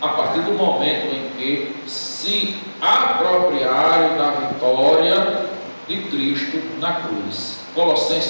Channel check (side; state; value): both; inverted; correlation -1.00